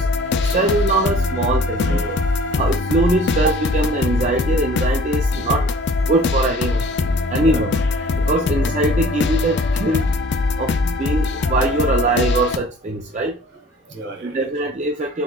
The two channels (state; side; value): normal; both; correlation 0.50